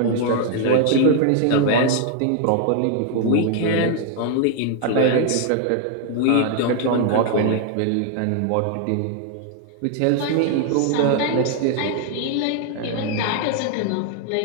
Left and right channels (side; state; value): both; different; correlation 0.00